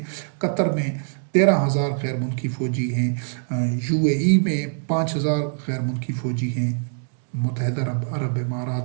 قطر میں 13,000 غیر ملکی فوجی ہیں. UAE میں 5,000 غیر ملکی فوجی ہیں. متحدہ عرب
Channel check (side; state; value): left; silent; digital silence